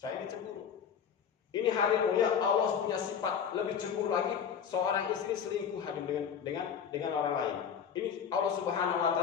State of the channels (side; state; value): right; quieter; 7.6 dB